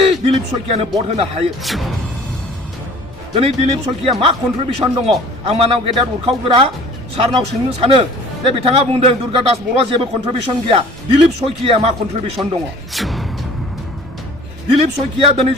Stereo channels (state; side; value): normal; both; correlation 0.49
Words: दिलीप सयकियानो भट होनो हायो दिनै दिलीप सयकिया मा कन्ट्रिबिउसन दङ आं मानाव गेदेर उरखावग्रा सारनाव सोंनो सानो जे बिथाङा बुंदों दुर्गादास बर'आ जेबो कन्ट्रिबिउसन गैया दिलीप सयकिया मा कन्ट्रिबिउसन दङ दिलीप सयकिया